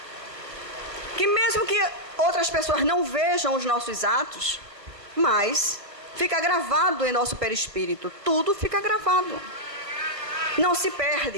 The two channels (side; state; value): left; late; 1.5 ms